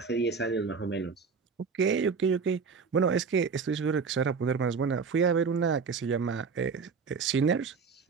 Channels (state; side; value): quieter; left; 5.4 dB